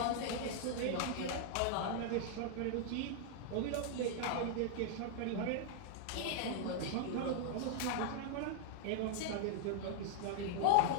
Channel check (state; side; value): different; both; correlation -0.01